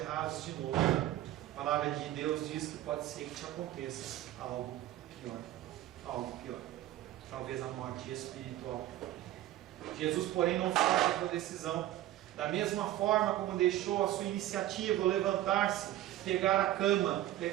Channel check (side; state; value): left; quieter; 14.1 dB